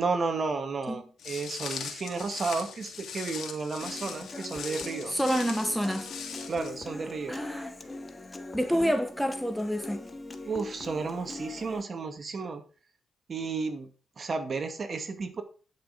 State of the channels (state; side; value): normal; both; correlation 0.88